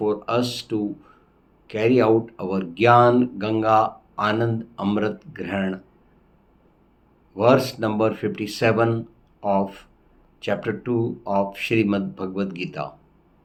us to carry out our Gyan Ganga Anand Amrit Grahan, verse number 57 of chapter 2 of Shrimadbhagwadgita.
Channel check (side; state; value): both; identical; correlation 1.00